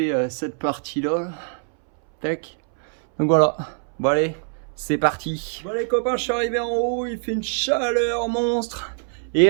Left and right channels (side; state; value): left; silent; 63 dB below the other